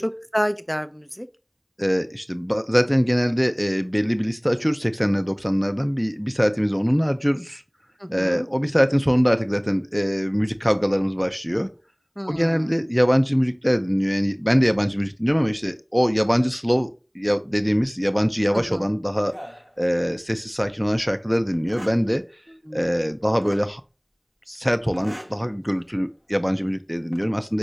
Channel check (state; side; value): identical; both; correlation 1.00